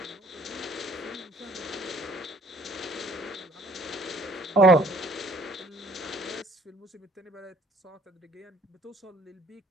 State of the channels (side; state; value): both; normal; correlation 0.57